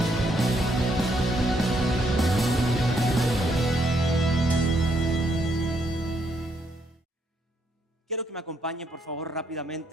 Quiero que me acompañen, por favor,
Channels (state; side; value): normal; both; correlation 0.74